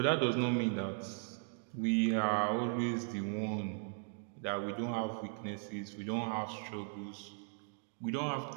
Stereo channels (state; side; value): silent; left; 53 dB below the other